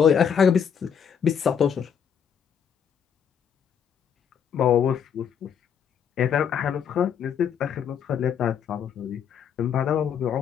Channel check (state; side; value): quieter; right; 7.8 dB